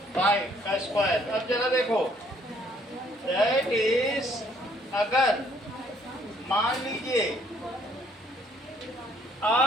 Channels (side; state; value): both; normal; correlation 0.64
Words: 5 का स्क्वायर। अब जरा देखो, दैट इज, अगर मान लीजिए